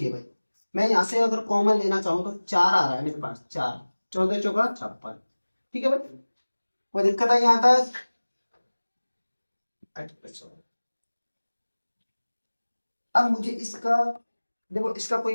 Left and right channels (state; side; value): inverted; both; correlation -1.00